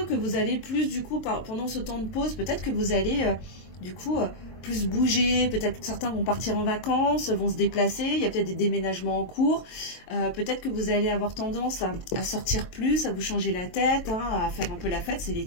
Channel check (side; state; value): right; late; 22 ms